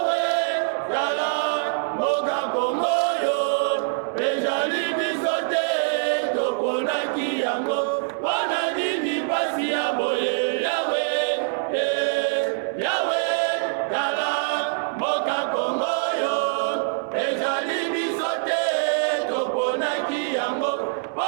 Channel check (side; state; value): left; silent; digital silence